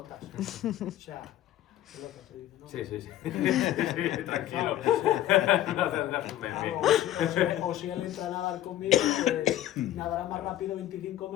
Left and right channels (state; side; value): quieter; right; 13.2 dB